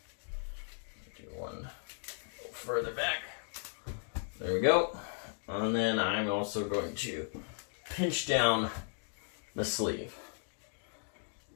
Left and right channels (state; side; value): silent; right; 54 dB below the other